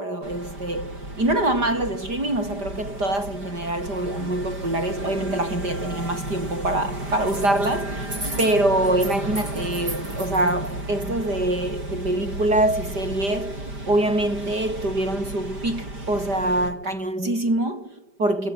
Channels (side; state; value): left; late; 5.0 ms